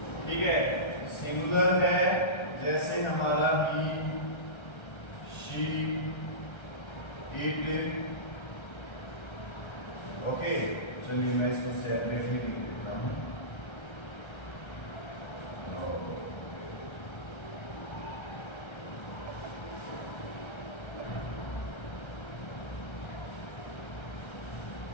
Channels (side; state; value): right; late; 1.3 ms